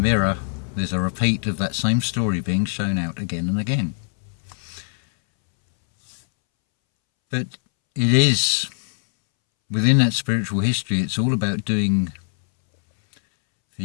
there's a repeat of that same story being shown out again and again. But it is, within that spiritual history, it's all about doing for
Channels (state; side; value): silent; right; 64 dB below the other